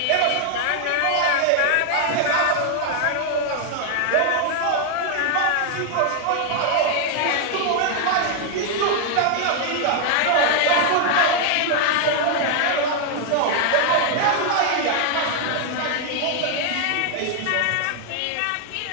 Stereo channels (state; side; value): different; both; correlation 0.00